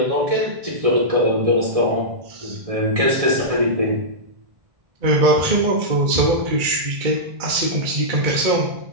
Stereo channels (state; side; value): late; left; 1.6 ms